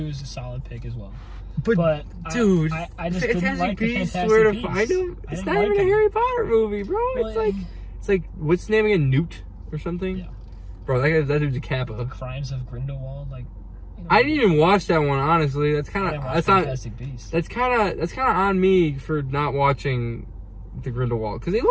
is a solid pick as well. But dude, I just didn't like the Fantastic where to Beasts. find him? It's not even a Harry Potter movie, bro. Well, it's like what's his name again? Newt or something? Yeah. Bro, that dude's a Kappa. Crimes of Grindelwald, I didn't even watch that one, honestly. That's Fantastic Beasts. That's kind of on me for not watching the Grindelwald, because it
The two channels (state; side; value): identical; both; correlation 1.00